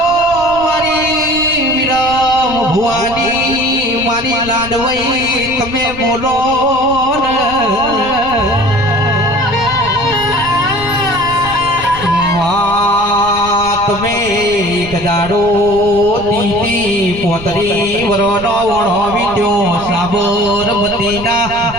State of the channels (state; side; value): noise; right; rumble, 15 dB below the sound